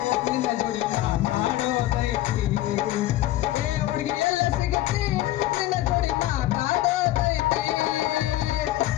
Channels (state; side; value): quieter; right; 15.1 dB